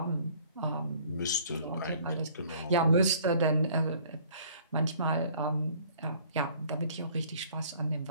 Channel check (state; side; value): inverted; both; correlation -0.55